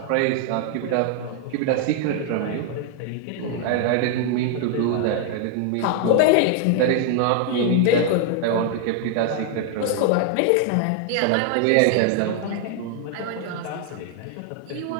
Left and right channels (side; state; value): both; different; correlation 0.00